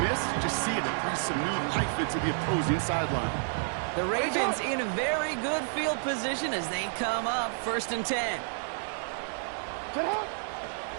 miss, you just see it breathes some new life into the opposing sideline. The Ravens in a very good field position as they come up 1st and 10.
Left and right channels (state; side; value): silent; left; digital silence